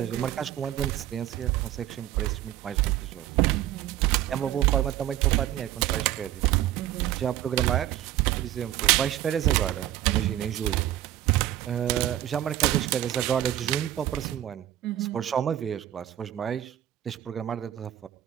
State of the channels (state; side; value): quieter; left; 12.7 dB